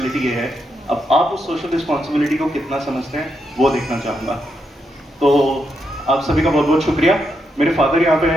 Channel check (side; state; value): both; normal; correlation 0.81